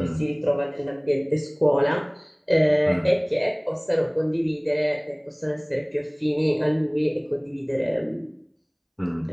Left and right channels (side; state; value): both; identical; correlation 1.00